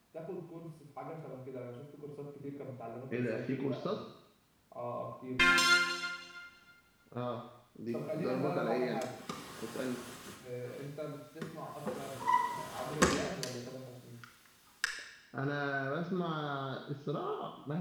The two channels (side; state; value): both; identical; correlation 1.00